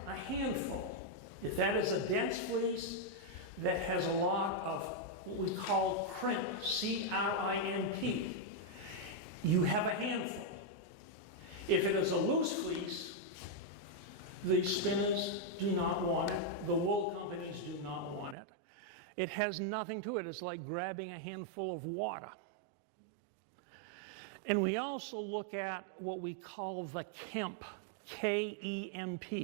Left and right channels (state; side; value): drops out; left; at 18.4 s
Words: a handful, if that is a dense fleece that has a lot of what we call crimp, C-R-I-M-P, you have a handful. If it is a loose fleece, the spinners do not want it, the wool companies do not want it. It has nothing to it. It's like grabbing a handful of water. And we also look at what we call the kemp,